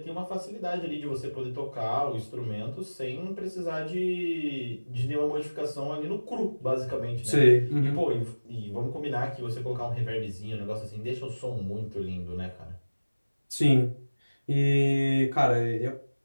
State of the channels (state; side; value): inverted; both; correlation -1.00